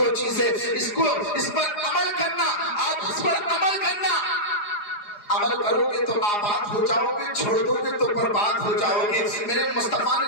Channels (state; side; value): late; right; 4.9 ms